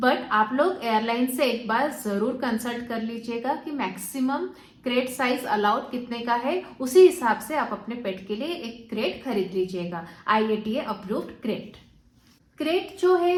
आप लोग एयरलाइन से एक बार जरूर कंसल्ट कर लीजिएगा कि मैक्सिमम क्रेट साइज अलाउड कितने का है, उसी हिसाब से आप अपने पेट के लिए एक क्रेट खरीद लीजिएगा, IATA अप्रूव्ड क्रेट। क्रेट जो है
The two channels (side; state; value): both; identical; correlation 1.00